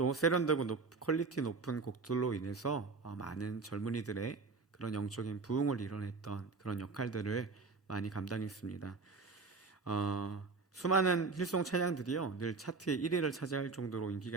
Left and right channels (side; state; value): left; quieter; 4.3 dB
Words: 세련되고 퀄리티 높은 곡들로 인해서 많은 젊은이들의 그런 영적인 부흥을 이뤄냈던 그런 역할들을 많이 감당했습니다. 수많은 힐송 찬양들이요, 늘 차트의 1위를 차지할 정도로